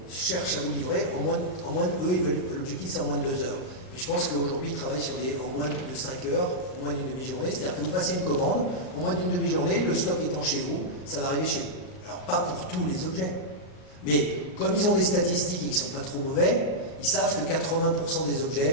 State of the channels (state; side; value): late; right; 38 ms